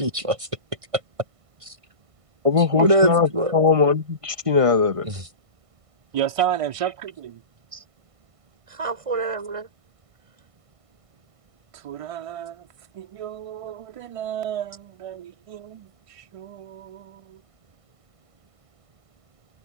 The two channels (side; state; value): left; late; 1.5 ms